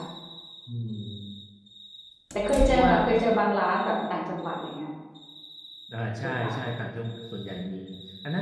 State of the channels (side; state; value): both; identical; correlation 1.00